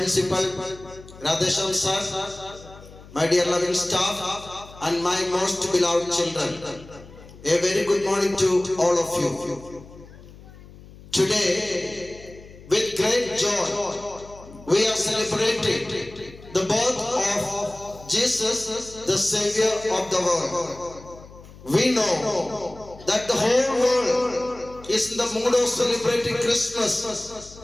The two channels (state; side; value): noise; left; hum, 20 dB below the sound